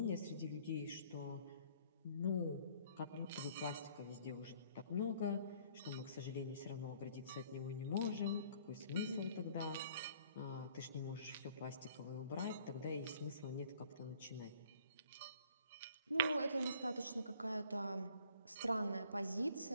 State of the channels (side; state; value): both; inverted; correlation -0.57